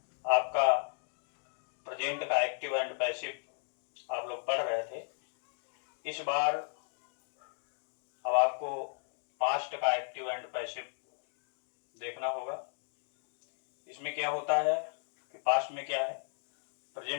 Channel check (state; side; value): silent; right; 54 dB below the other